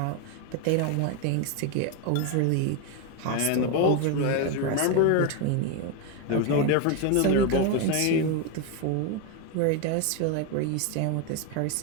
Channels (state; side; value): different; both; correlation 0.02